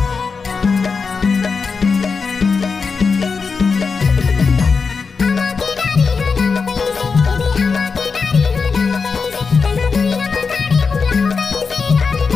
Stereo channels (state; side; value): quieter; right; 5.0 dB